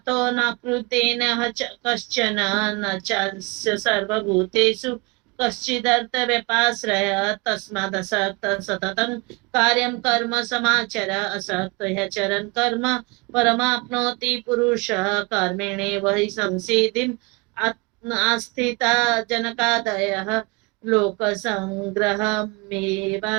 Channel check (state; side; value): quieter; left; 27.5 dB